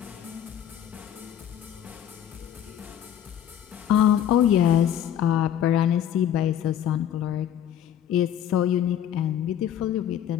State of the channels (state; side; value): quieter; right; 10.1 dB